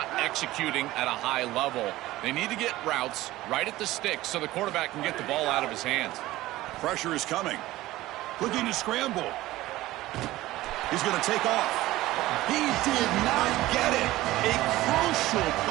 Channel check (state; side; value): quieter; left; 16.9 dB